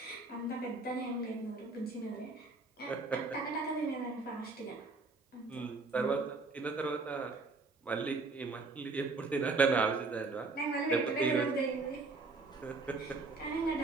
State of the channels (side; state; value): left; quieter; 3.7 dB